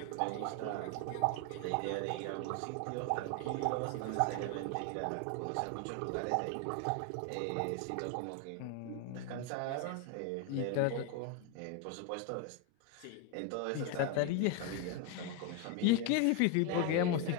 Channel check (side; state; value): both; different; correlation 0.01